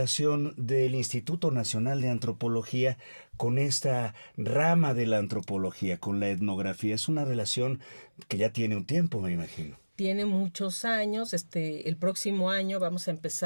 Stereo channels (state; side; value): inverted; both; correlation -1.00